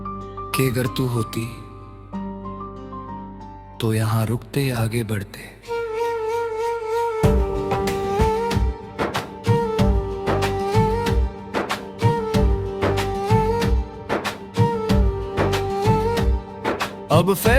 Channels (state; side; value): identical; both; correlation 1.00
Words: कि अगर तू होती तो यहां रुकते आगे बढ़ते। अब